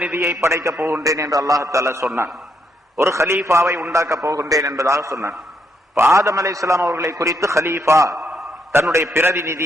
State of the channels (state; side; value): normal; both; correlation 0.76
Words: படைக்க போகின்றேன் என்று அல்லாஹ் தஆலா சொன்னான். ஒரு ஹலீஃபாவை உண்டாக்க போகின்றேன் என்பதாக சொன்னான். ஆதம் அலைஹிஸ்ஸலாம் அவர்களை குறித்து ஹலீஃபா, தன்னுடைய